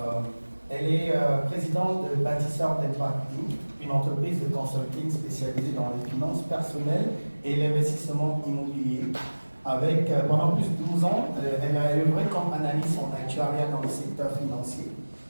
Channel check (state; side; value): inverted; both; correlation -1.00